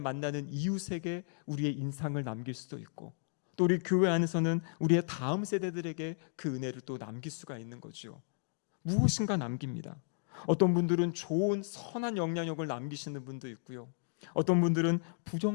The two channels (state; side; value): silent; right; digital silence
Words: 이웃에게 우리의 인상을 남길 수도 있고, 또 우리 교회 안에서는 우리의 다음 세대들에게 그 은혜를 또 남길 수가 있는 거죠. 무엇인가 남깁니다. 어떤 분들은 좋은 선한 영향력을 남기시는 분도 있고요, 어떤 분들은